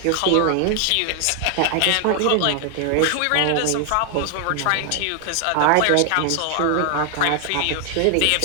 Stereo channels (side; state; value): both; different; correlation 0.00